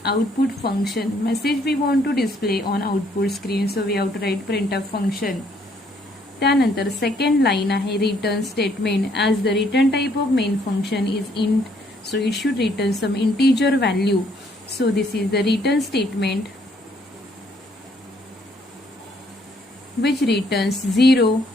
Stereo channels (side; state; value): both; normal; correlation 0.67